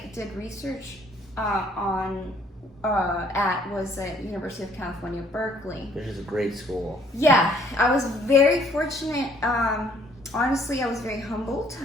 did research at was at University of California, Berkeley. Which is a great school. Yeah, I was very fortunate. Honestly, I was very humbled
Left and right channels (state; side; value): normal; both; correlation 0.62